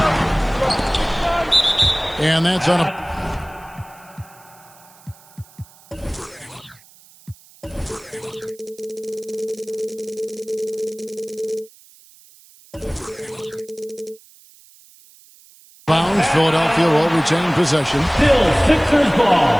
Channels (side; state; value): right; noise; hiss, 26 dB below the sound